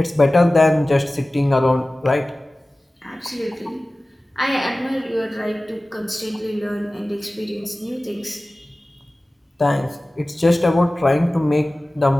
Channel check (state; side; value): normal; both; correlation 0.97